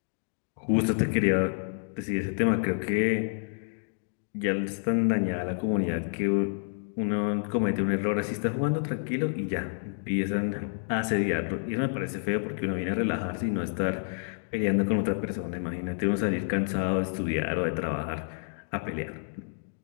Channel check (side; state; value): right; silent; digital silence